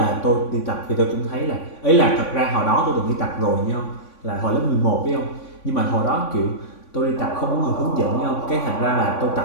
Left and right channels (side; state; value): right; late; 3.5 ms